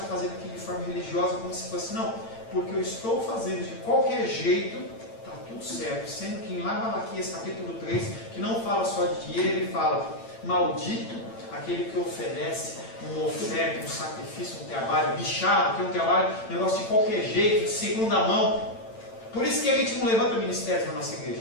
fazendo aquilo de forma religiosa, como se fosse, não, porque eu estou fazendo de qualquer jeito, está tudo certo. Sendo que em lá Malaquias capítulo 3, que não fala só de dinheiro, ele fala, maldito aquele que oferece uma oferta, um sacrifício, um trabalho bichado, que é um trabalho, um negócio de qualquer jeito, de segunda mão. Por isso que a gente não levanta ministérios na nossa igreja.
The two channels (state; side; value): late; right; 8.9 ms